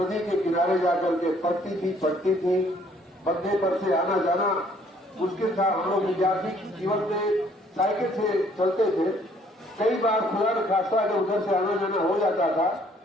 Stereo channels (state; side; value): normal; both; correlation 0.62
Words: के किनारे जाकर के पड़ती थी। बंदे पर से आना जाना मुश्किल था। हम लोग विद्यार्थी जीवन में साइकिल से चलते थे, कई बार खुदा न खास्ता अगर उधर से आना जाना हो जाता था